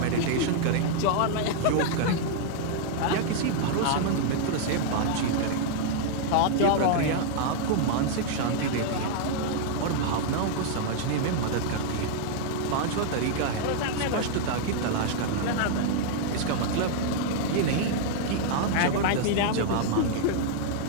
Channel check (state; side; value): different; both; correlation -0.01